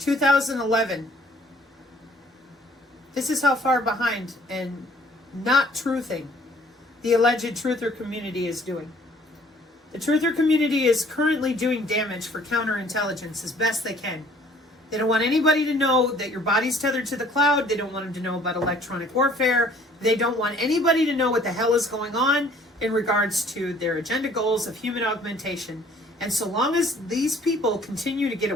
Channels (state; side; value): normal; both; correlation 0.57